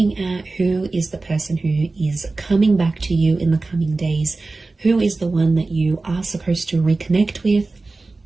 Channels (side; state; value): left; quieter; 3.5 dB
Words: at who is the person who is coming back to you in the coming days. Who is the one that you are supposed to reconnect with,